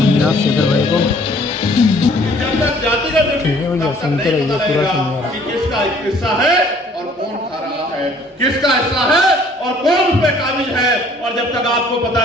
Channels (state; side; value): normal; both; correlation 0.57